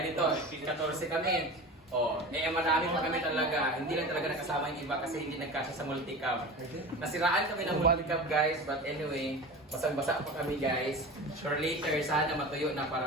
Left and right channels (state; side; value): normal; both; correlation 0.32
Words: dito, 14 kami. Oh, marami pa kami talaga. Hindi lang talaga nakasama yung iba kasi hindi nagkasya sa multicam. Nasiraan kami ng multicam guys, but anyway, basang-basa pa kami guys. For later, sana matuyo na